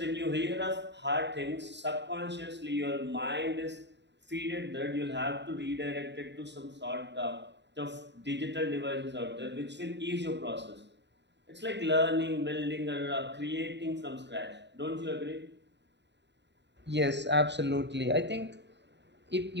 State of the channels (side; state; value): left; late; 0.51 ms